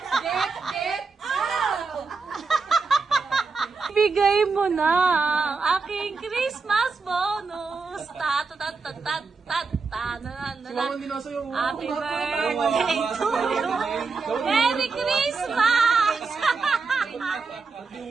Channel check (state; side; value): quieter; left; 4.5 dB